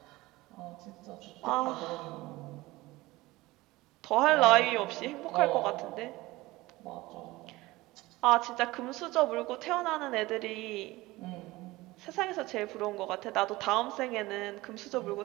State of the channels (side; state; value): left; quieter; 19.8 dB